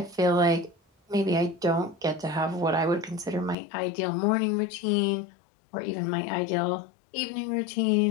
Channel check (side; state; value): right; drops out; at 3.6 s